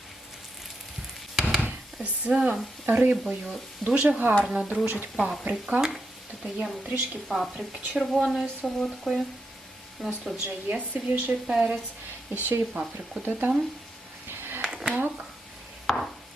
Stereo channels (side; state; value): both; normal; correlation 0.84